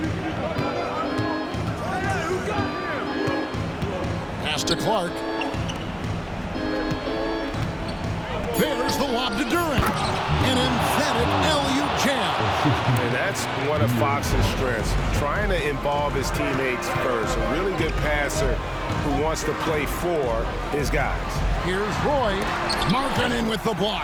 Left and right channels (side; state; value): both; identical; correlation 1.00